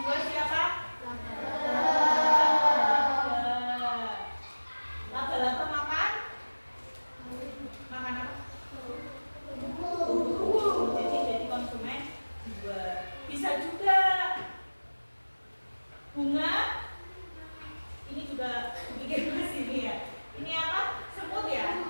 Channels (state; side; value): inverted; both; correlation -1.00